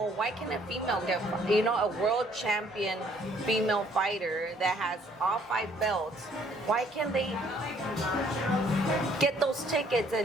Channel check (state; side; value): normal; both; correlation 0.62